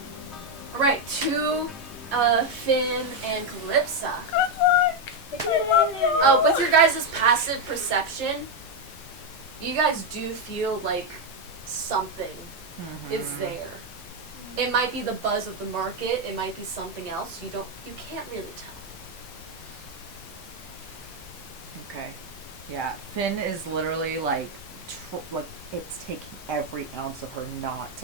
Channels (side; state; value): both; normal; correlation 0.04